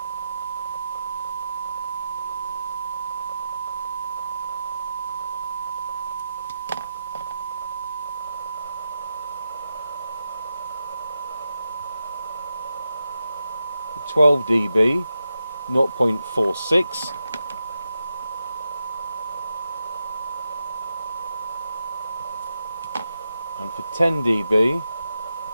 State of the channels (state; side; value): inverted; both; correlation -0.88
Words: 12 dB, 0.46. And for 10 dB,